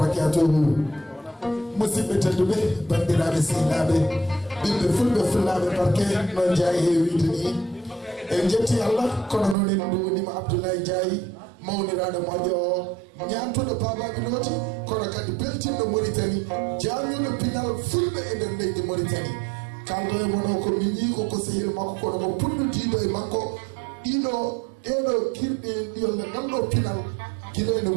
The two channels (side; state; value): left; drops out; at 9.6 s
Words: musidɓe tedduɓe bandiraɓe sehilaɓe ɓiɓɓe fulɓe fullaɓe barke noon Ndiaye heewide ni en jetti Allah kono noon en duwonima Abdoulaye Ndiaye mawniraɗo moƴƴo o ñantuɗo babaɓe nooti kono kadi beltinɗo Mauritanie jamñuɗo pinal fulɓe e nder leydi Mauritanie kaldo e mono ko min yii ko sehil makko kono ko punnutiɗo e makko ɗeɗo kirɗe ɗiyolle ngalɗo pinal guila ene